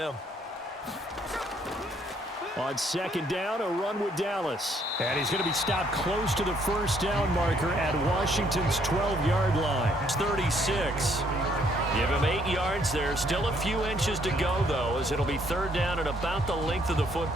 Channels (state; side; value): normal; both; correlation 0.67